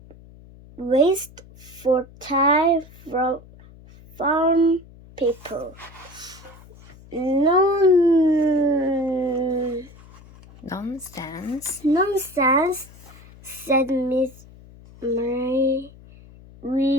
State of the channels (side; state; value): left; noise; hum, 22 dB below the sound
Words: waste for time from farm people. Nonsense, said Miss Mary.